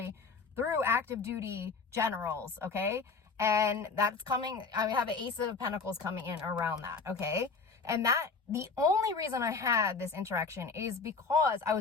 through active duty generals, okay? And that's coming, I have an Ace of Pentacles coming in around that, okay? And that, the only reason I had this interaction is because I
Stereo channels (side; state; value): right; quieter; 4.6 dB